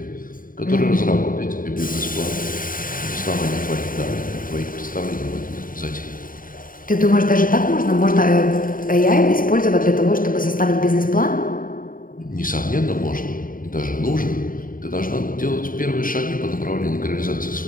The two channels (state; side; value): late; right; 0.40 ms